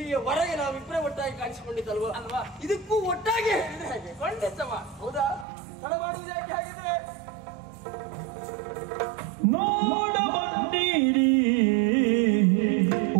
ನಾವಿಬ್ಬರೇ ಒಟ್ಟಾಗಿ ಕಾಣಿಸಿಕೊಂಡಿದ್ದಲ್ವಾ ಅಲ್ವಾ? ಇದಕ್ಕೂ ಒಟ್ಟಾಗಿ ಹೇಳಿದ್ರೆ ಹಾಗೆ ಖಂಡಿತವ. ಹೌದಾ? ತಡ ಮಾಡುವುದು ಯಾಕೆ ಹಾಗಿದ್ರೆ? ನೋಡ ಬಂದಿರಿ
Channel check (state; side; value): drops out; left; at 5.5 s